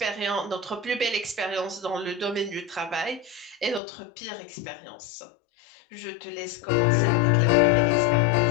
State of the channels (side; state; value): right; drops out; at 3.8 s